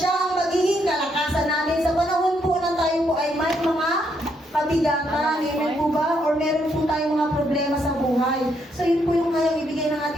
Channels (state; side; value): normal; both; correlation 0.75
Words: ang magiging kalakasan natin sa panahon po na tayo po ay may mga kabigatan, amen po ba? Or meron po tayong mga problema sa buhay. So yun po yung kayang ibigay ng